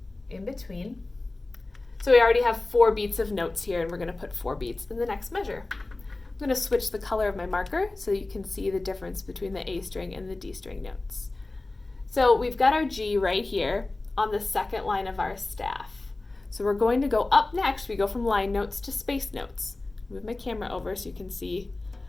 in between. So we already have 4 beats of notes here, and we're going to put 4 beats in the next measure. I'm going to switch the color of my marker so you can see the difference between the A string and the D string notes. So we've got our G right here on the second line of our staff. So we're going to go up next. We go from line notes to space notes. Move my camera over so you can see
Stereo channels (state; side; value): quieter; right; 3.1 dB